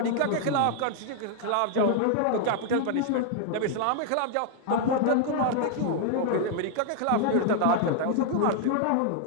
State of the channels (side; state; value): both; different; correlation 0.00